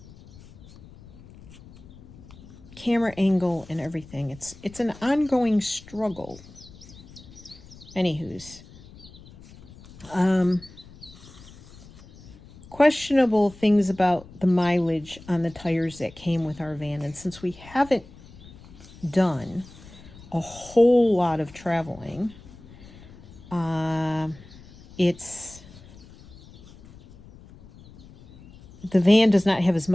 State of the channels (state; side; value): noise; left; rumble, 21 dB below the sound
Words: camera angle and everything. It's an ongoing struggle. Anywho's, questionable things about the mileage on the tires that came with our van. And since we haven't done a whole lot of traveling, the van does not have as